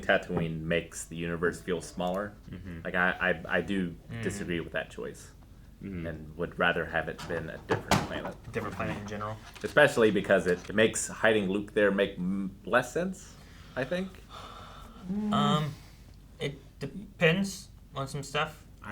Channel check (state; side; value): identical; both; correlation 1.00